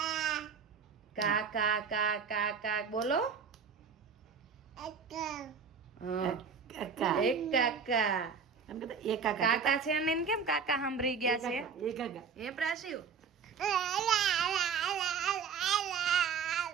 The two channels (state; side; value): quieter; left; 6.0 dB